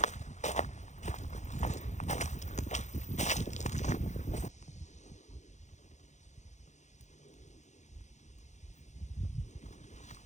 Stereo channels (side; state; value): right; late; 0.34 ms